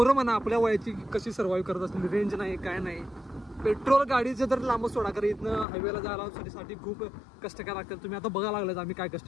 म्हणा आपल्या वयाची कशी सर्वाइव्ह करत असतील. रेंज नाही काय नाही पेट्रोल गाडीचं तर लांब सोडा कारण इथनं हायवेला जायला साठी खूप कष्ट करायला लागतात. तुम्ही आता बघायला लागलात आम्ही काय कष्ट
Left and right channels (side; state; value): right; drops out; at 5.7 s